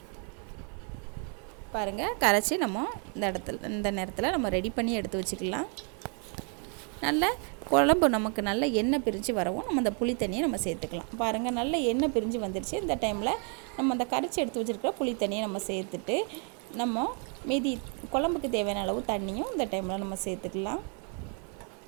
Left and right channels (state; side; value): quieter; left; 39.5 dB